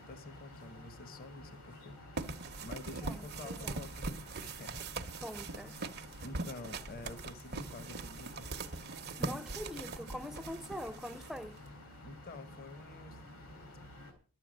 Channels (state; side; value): normal; both; correlation 0.45